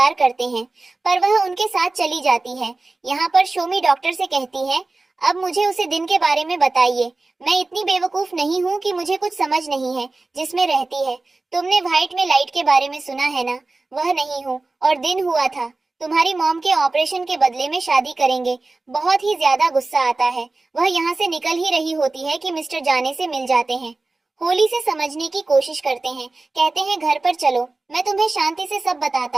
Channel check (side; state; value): left; quieter; 3.4 dB